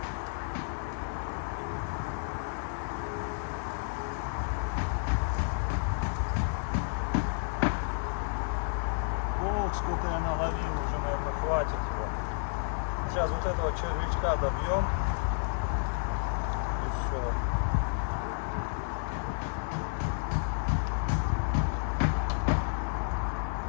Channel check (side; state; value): right; silent; 57 dB below the other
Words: Ох, сколько я наловил, уже, наверное, хватит его. Сейчас вот этого червячка добьем. И все.